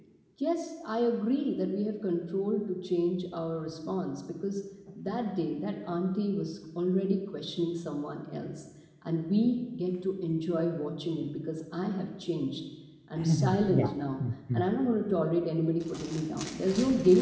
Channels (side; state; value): both; identical; correlation 1.00